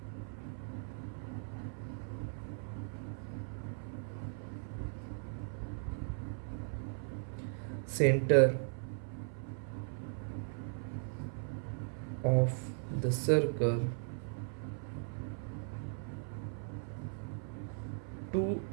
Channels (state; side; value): silent; left; 52 dB below the other